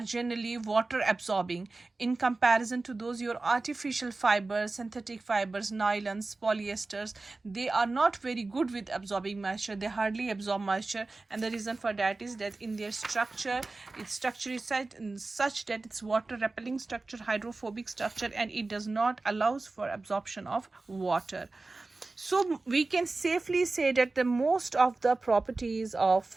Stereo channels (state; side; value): quieter; left; 3.4 dB